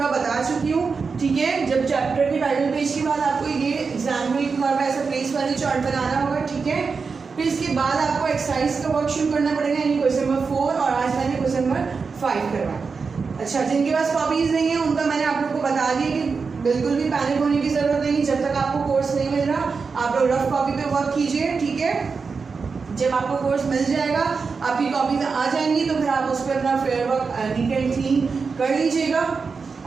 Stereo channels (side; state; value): left; quieter; 5.0 dB